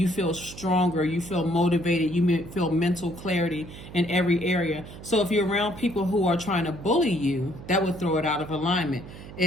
feel stronger, you feel motivated, you feel mental clarity in every area. So if you're around people who are trying to bully you, that would throw it out of alignment.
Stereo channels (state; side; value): noise; right; hum, 15 dB below the sound